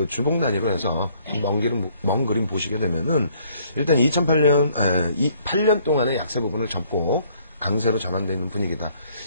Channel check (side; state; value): both; inverted; correlation -0.63